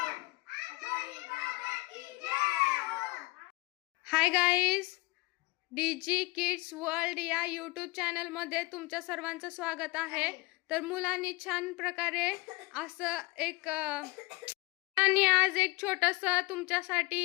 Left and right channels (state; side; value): quieter; right; 24.4 dB